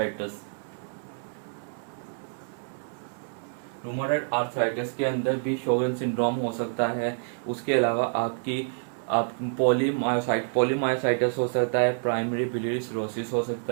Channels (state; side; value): silent; left; 59 dB below the other